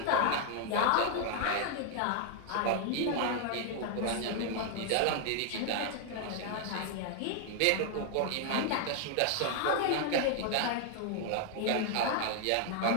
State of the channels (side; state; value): both; different; correlation 0.00